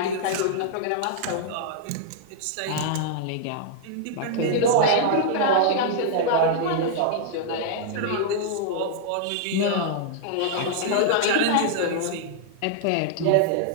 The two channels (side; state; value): both; different; correlation -0.01